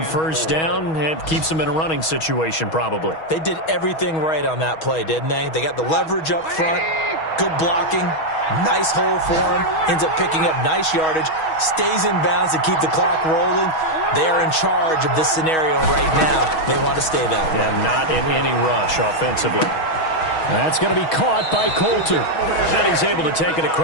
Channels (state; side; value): late; right; 6.3 ms